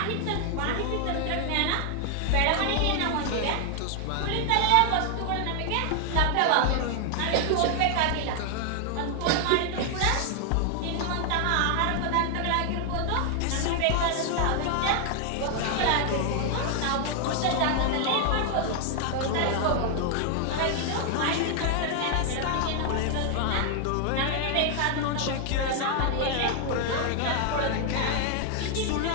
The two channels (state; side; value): different; both; correlation 0.00